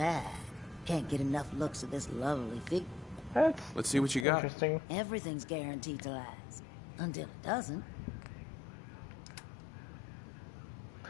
Can't get enough looks at this lovely figure. Let's see what you got. Interesting. Everything's guaranteed to last. Until it doesn't.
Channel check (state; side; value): drops out; right; at 4.2 s